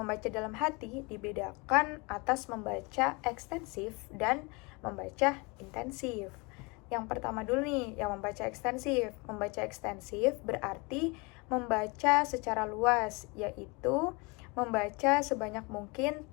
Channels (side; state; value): right; quieter; 28.2 dB